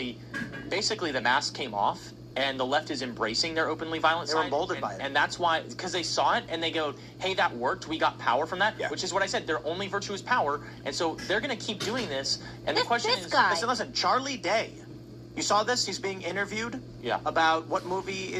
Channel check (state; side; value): identical; both; correlation 1.00